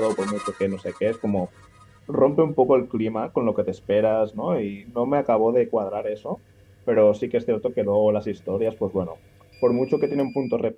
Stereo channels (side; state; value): both; identical; correlation 1.00